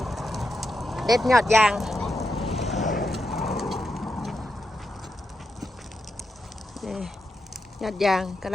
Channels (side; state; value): both; normal; correlation 0.86